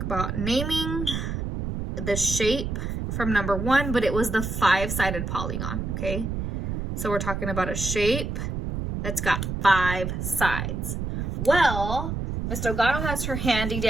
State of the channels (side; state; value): right; noise; rumble, 3 dB below the sound